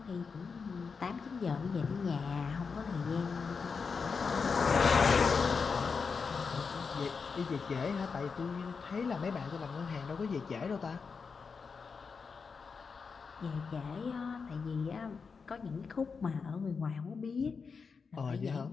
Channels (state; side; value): quieter; right; 5.3 dB